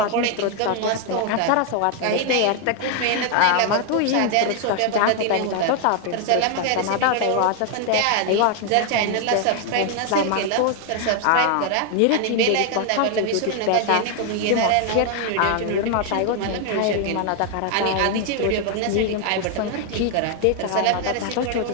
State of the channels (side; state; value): both; different; correlation 0.00